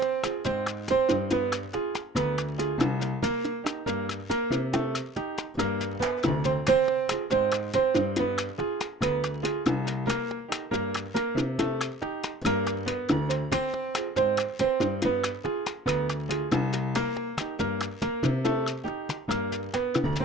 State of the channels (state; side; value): normal; both; correlation 0.55